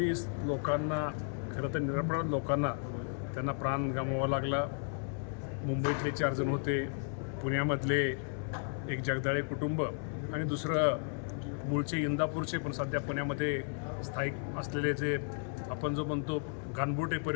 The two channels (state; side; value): silent; right; 55 dB below the other